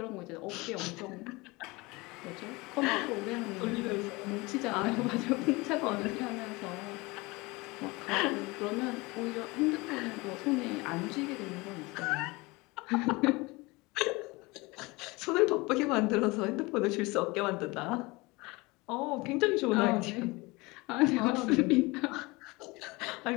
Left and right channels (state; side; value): quieter; right; 23.8 dB